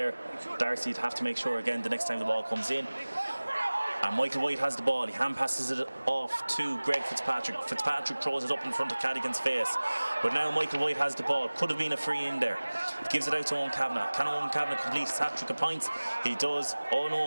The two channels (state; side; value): inverted; both; correlation -1.00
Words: Darcy'd have to make sure again the next time the ball comes in. And Michael White has the ball. He hand passes it off to Greg Fitzpatrick. Fitzpatrick throws it up in front of Cadigan's face. But now Michael White has the ball. Could have been a free in there. Gives it out to Owen Kavanagh. Can Owen Kavanagh complete his hat-trick of points? He does. Oh